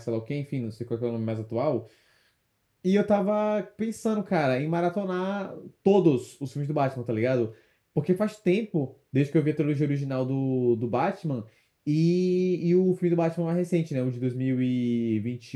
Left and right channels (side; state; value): both; identical; correlation 1.00